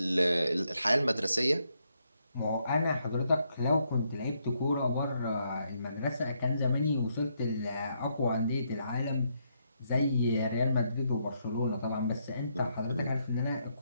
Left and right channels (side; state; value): both; inverted; correlation -0.76